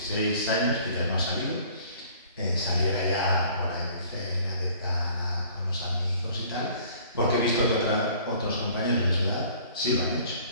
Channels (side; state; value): both; inverted; correlation -0.53